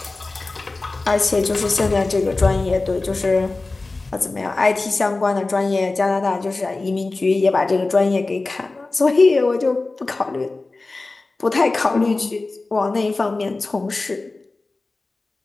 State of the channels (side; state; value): right; quieter; 3.4 dB